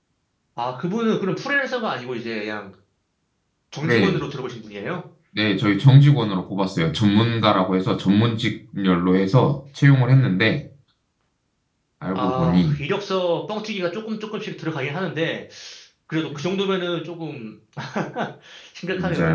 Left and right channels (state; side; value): identical; both; correlation 1.00